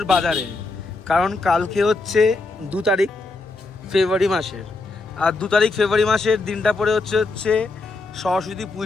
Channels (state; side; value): quieter; right; 3.4 dB